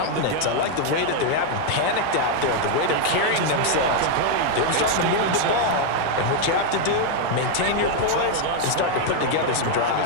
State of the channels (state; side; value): different; both; correlation 0.01